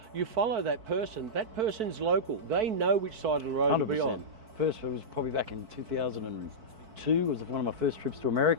you follow that person. That person's local. They know which side of the road 100%. to be on. First, it was probably back in 2002, was one of my first trips to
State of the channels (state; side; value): late; left; 4.6 ms